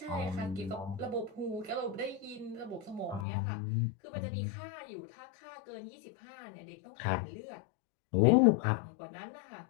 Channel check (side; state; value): right; drops out; at 3.2 s